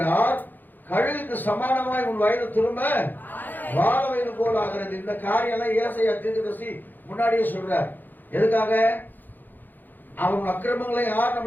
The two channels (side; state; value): right; late; 0.087 ms